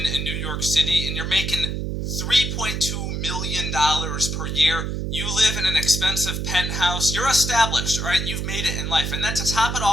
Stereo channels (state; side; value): noise; right; hum, 2 dB below the sound